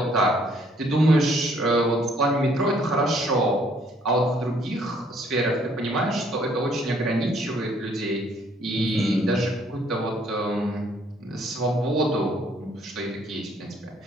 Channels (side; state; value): both; normal; correlation 0.64